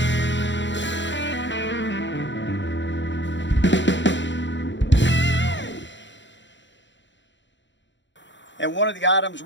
And one of the items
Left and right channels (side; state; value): right; late; 0.53 ms